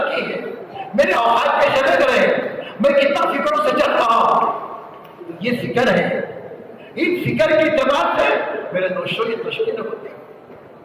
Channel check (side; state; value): both; identical; correlation 1.00